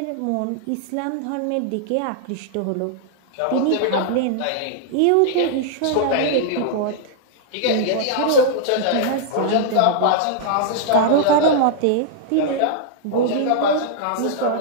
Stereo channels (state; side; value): different; both; correlation -0.01